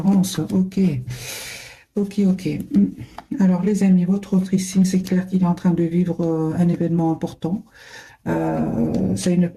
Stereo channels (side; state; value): both; identical; correlation 1.00